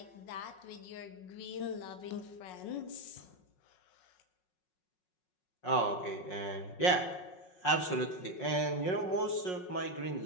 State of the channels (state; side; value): late; right; 5.5 ms